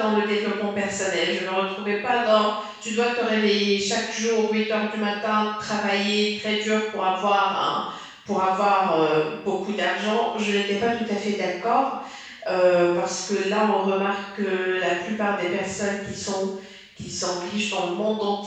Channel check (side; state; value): both; identical; correlation 1.00